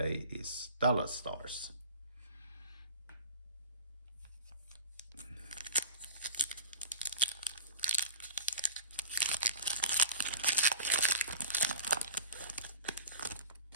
is Dallas Stars.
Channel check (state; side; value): inverted; both; correlation -0.37